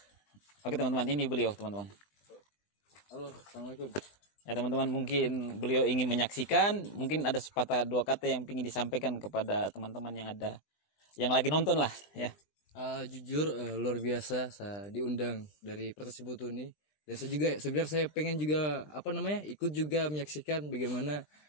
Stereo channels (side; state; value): right; late; 20 ms